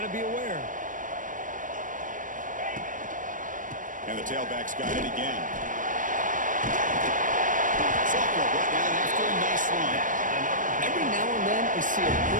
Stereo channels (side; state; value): left; late; 0.38 ms